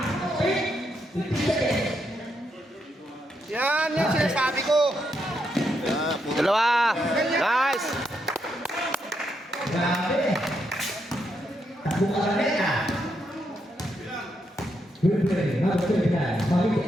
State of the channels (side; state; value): both; normal; correlation 0.80